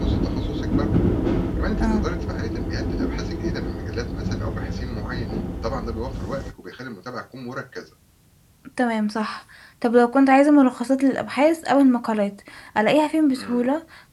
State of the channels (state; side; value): identical; both; correlation 1.00